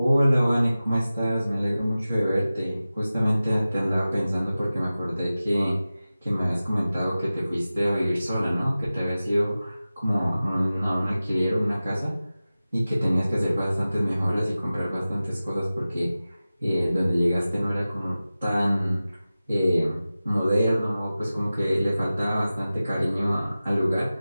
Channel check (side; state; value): both; inverted; correlation -0.96